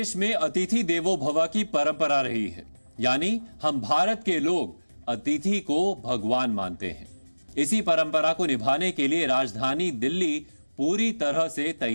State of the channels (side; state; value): both; inverted; correlation -1.00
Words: में अतिथि देवो भव की परंपरा रही है, यानी हम भारत के लोग अतिथि को भगवान मानते हैं। इसी परंपरा को निभाने के लिए राजधानी दिल्ली पूरी तरह से